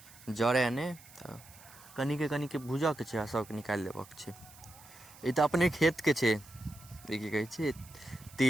जरय नहि। तऽ कनिके भूजऽके छै आ सबके निकालि लेबऽके छै। ई तऽ अपने खेतके छै, ई की कहै छै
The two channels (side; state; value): right; noise; hiss, 21 dB below the sound